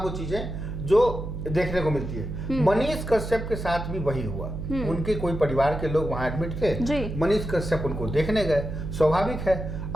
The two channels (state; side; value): noise; right; hum, 6 dB below the sound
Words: वो चीजें जो देखने को मिलती है। मनीष कश्यप के साथ भी वही हुआ। उनके कोई परिवार के लोग वहां एडमिट थे, मनीष कश्यप उनको देखने गए, स्वाभाविक है।